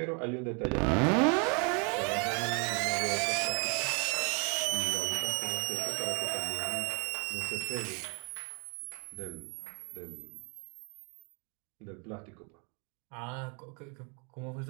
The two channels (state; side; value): quieter; left; 35.6 dB